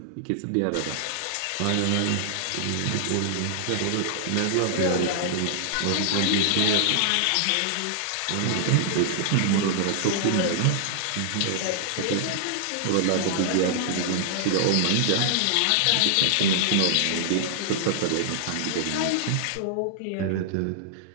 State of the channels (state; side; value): different; both; correlation -0.01